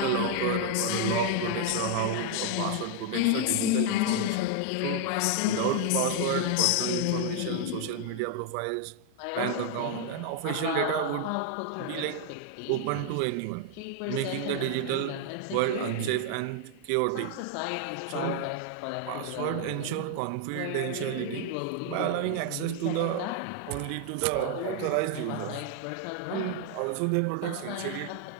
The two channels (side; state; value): both; different; correlation 0.00